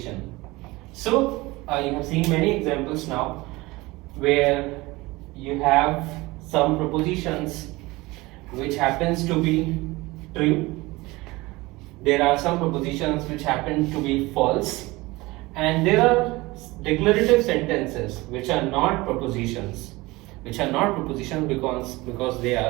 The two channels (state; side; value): quieter; left; 21.4 dB